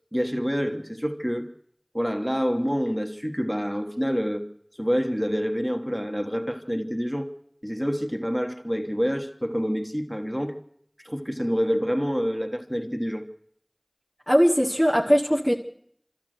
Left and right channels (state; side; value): identical; both; correlation 1.00